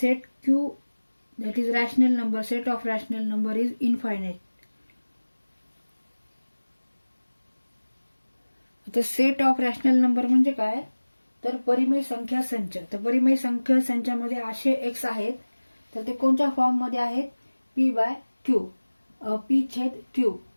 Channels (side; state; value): both; inverted; correlation -1.00